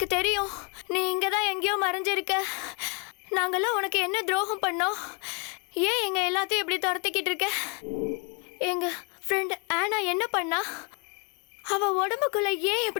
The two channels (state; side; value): quieter; right; 34.5 dB